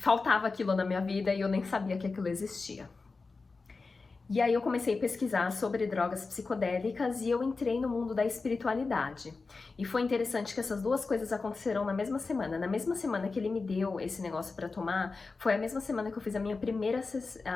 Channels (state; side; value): quieter; right; 4.1 dB